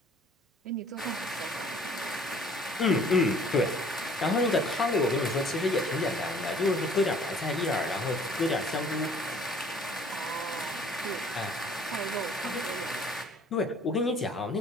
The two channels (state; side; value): normal; both; correlation 0.55